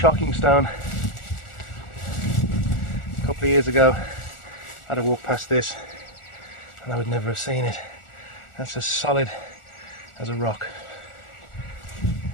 stone. A couple of years ago I had to walk past this and I would never have seen it. That's as solid as a rock.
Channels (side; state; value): right; late; 1.4 ms